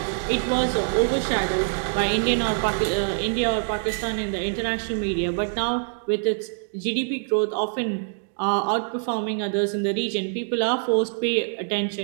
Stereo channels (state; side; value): silent; left; digital silence